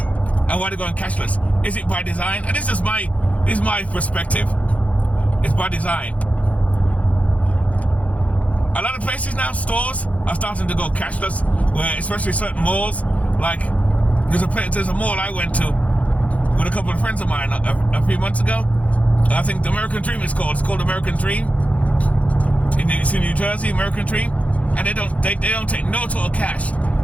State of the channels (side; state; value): right; late; 0.067 ms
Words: why they're going cashless? Is it by design? And this is my perspective. It's by design. A lot of places now, stores are starting to go cashless, where especially certain malls, like there's a mall I went to with a couple of friends of mine a few months ago. I think the American Dream is called. It's called American Dream. It's in New Jersey, American Dream, and they don't take no total cash,